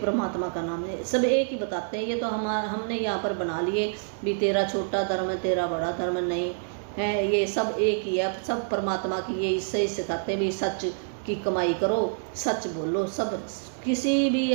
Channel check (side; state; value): left; silent; digital silence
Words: का नाम है, सब एक ही बताते हैं। ये तो हमने यहाँ पर बना लिए भी तेरा छोटा धर्म है, तेरा बड़ा धर्म नहीं है, ये सब एक ही है, सब परमात्मा की ये इससे सिखाते हैं भी सच की कमाई करो, सच बोलो। सब किसी भी